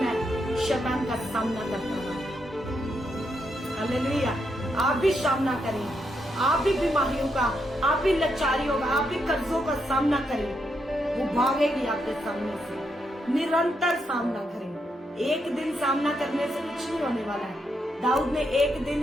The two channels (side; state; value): both; normal; correlation 0.80